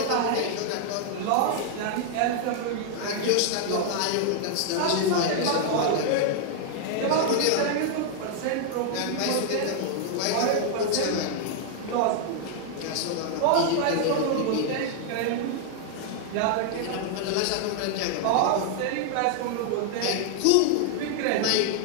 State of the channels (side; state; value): both; different; correlation 0.00